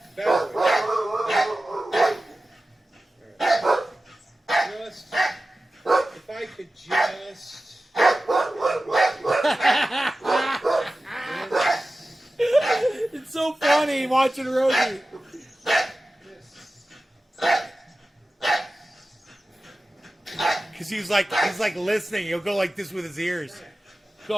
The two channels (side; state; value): both; normal; correlation 0.95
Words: Bad boy. Just, if I could just. It's so funny watching Rosie. Cause he's like listening. He'll go like this with his ears.